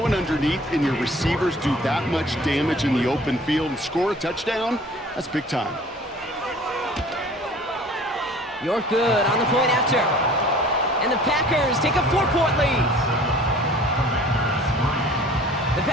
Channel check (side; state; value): both; normal; correlation 0.48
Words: it underneath and your receivers do that much damage in the open field and score a touchdown. That's big time. You're good on the point after. And the Packers take a 4-point lead. The